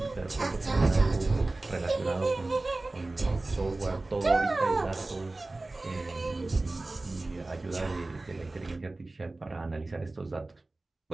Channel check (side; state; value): left; quieter; 3.0 dB